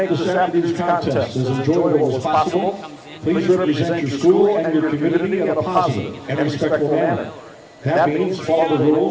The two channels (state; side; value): identical; both; correlation 1.00